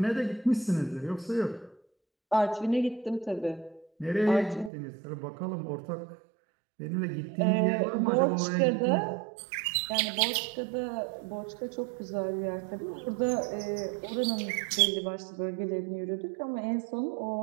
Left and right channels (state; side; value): drops out; left; at 4.7 s